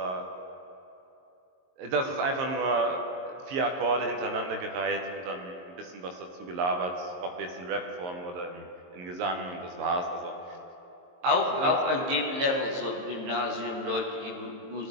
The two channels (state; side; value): late; left; 22 ms